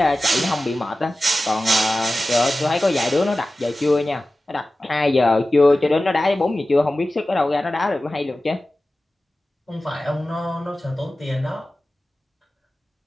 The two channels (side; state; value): both; normal; correlation 0.96